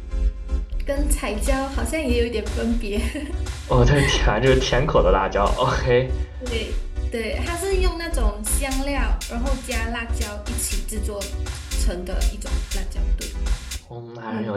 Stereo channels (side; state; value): both; identical; correlation 1.00